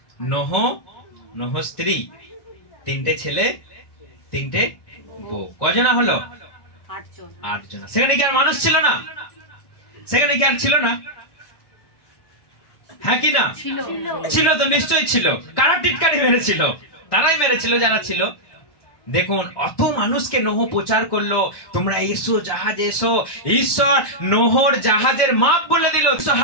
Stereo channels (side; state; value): right; late; 1.1 ms